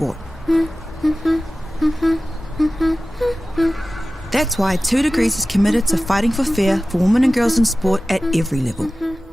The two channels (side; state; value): both; normal; correlation 0.96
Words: That's why 2 Degrees is committed to fighting for fair for women and girls in sport at every level.